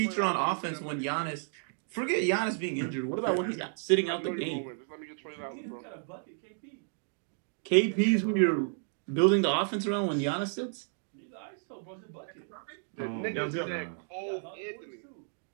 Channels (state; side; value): silent; left; digital silence